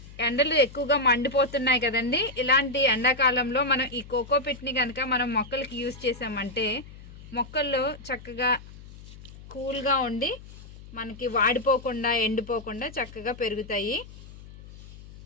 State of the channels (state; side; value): noise; left; hum, 18 dB below the sound